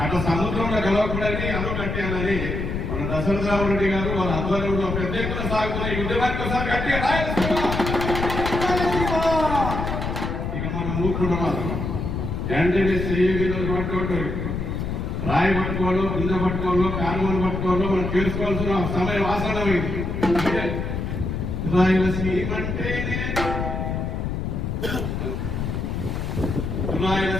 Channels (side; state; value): left; noise; rumble, 3 dB below the sound